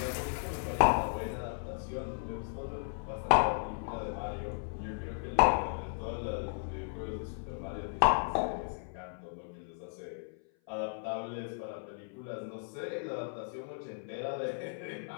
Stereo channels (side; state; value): right; silent; 54 dB below the other